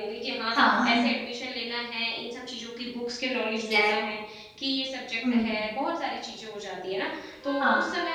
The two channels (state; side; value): identical; both; correlation 1.00